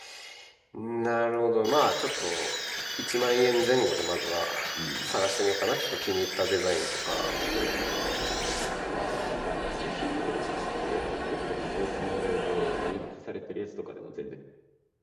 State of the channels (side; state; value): both; identical; correlation 1.00